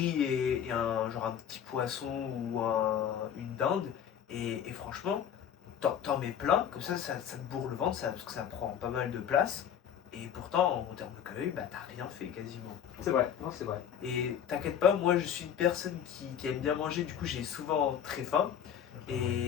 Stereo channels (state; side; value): quieter; right; 8.9 dB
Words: et genre un petit poisson ou une dinde. Et franchement, t'en mets plein, comme ça te bourre le ventre, parce que ça prend pas mal de place. Et pourtant, en termes de calories, bah t'as rien fait quasiment. C'est vrai, non, c'est vrai. Et t'inquiète pas, moi je suis une personne qui aime bien manger, du coup j'ai souvent très faim.